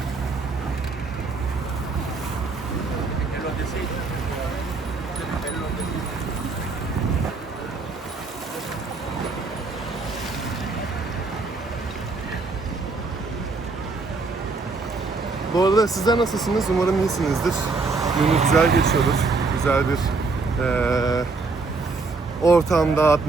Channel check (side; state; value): left; quieter; 4.0 dB